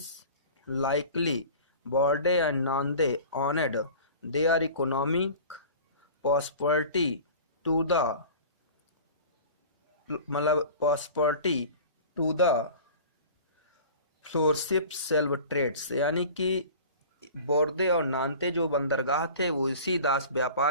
likely Bordeaux and Nantes owned their economic prosperity to the flourishing slave trades, यानी कि बोर्दे और नान्ते जो बंदरगाह थे वो इसी दास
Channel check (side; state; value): both; inverted; correlation -0.41